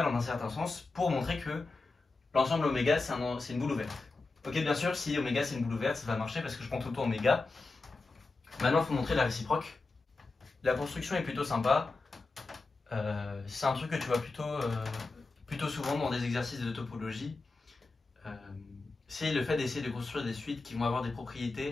en un certain sens pour montrer que l'ensemble oméga c'est une boule ouverte. Ok, bien sûr, si oméga c'est une boule ouverte, ça va marcher parce que je prends tout le temps oméga. Maintenant, il faut montrer la réciproque. La construction est plutôt sympa. C'est un truc que tu vois plutôt souvent dans des exercices de topologie. C'est le fait d'essayer de construire des suites qui vont avoir des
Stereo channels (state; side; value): quieter; right; 3.6 dB